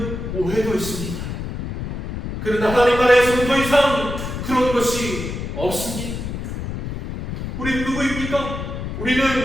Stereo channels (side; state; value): left; noise; rumble, 6 dB below the sound